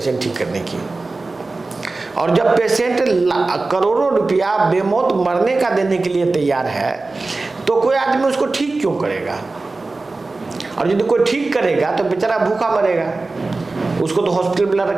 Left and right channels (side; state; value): left; quieter; 3.5 dB